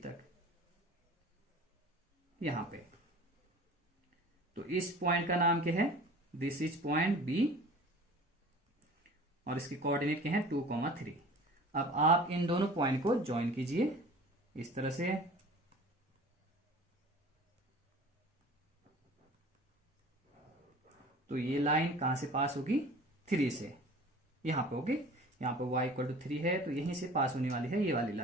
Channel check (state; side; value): normal; both; correlation 0.43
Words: तक यहां पे. तो इस पॉइंट का नाम क्या है? दिस इज पॉइंट B और इसके कोऑर्डिनेट क्या है? 2, 3. अब आप इन दोनों पॉइंट को ज्वाइन कीजिए इस तरह से. तो ये लाइन कहां से पास होगी? 3 से यहां पे. ओके, यहां पे y = 3 है तो यहीं से पास होने वाली है ये वाली